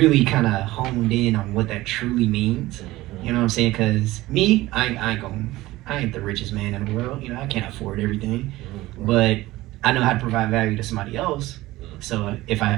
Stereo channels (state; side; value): quieter; left; 17.9 dB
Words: kind of honed in on what that truly means. You know what I'm saying? Because me, I ain't the richest man in the world. You know, I can't afford everything. But I know how to provide value to somebody else. So if I